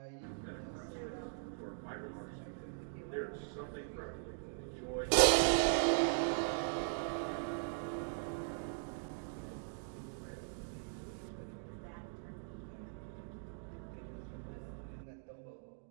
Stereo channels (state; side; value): silent; left; digital silence